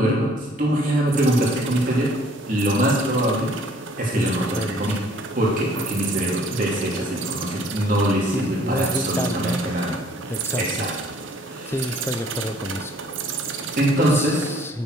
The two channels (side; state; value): both; normal; correlation 0.58